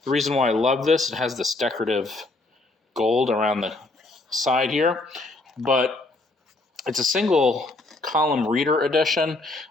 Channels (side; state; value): right; quieter; 3.1 dB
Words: The reason why I love this, it has this decorative gold around the side here, but it's a single column reader edition.